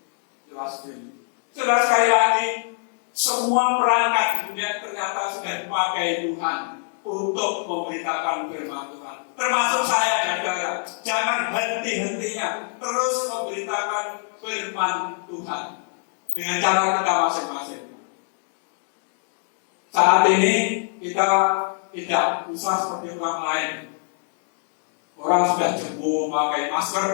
Sudah sekali lagi, semua perangkat di dunia ternyata sudah dipakai Tuhan untuk memberitakan firman Tuhan. Termasuk saya dan saudara. Jangan hakimnya terus memberitakan firman Tuhan dengan cara kita masing-masing. Saat ini kita tidak usah seperti orang lain. Orang sudah jemur memakai masker,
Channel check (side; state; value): right; silent; 57 dB below the other